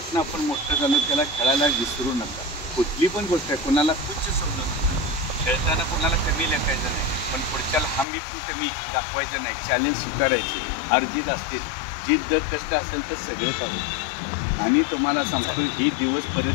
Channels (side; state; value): right; drops out; at 8.1 s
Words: आपण मोठं झालो त्याला खेळायला विसरू नका. कुठली पण गोष्ट आहे, कोणाला तुच्छ समजू नका. खेळताना कोणाला कमी लेखायचं नाही, पण पुढच्याला हमी पण कमी दाखवायचं नाही. चॅलेंज स्वीकारायचे. अर्जित असते, जीत जर कष्ट असेल तर सगळेच आहोत. आणि तुम्हाला सांगतो, ही दिवस